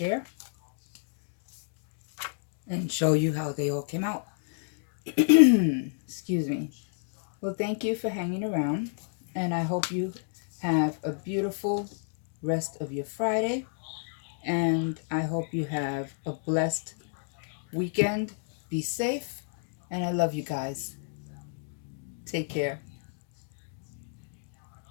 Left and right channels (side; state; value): right; silent; digital silence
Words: and show you how they all came out. Excuse me. Well, thank you for hanging around, and I hope you have a beautiful rest of your Friday, and I hope you have a blessed weekend. Be safe, and I love you guys. Take care.